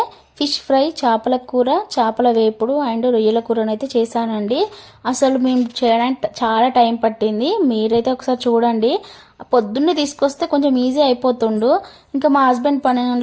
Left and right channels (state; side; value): identical; both; correlation 1.00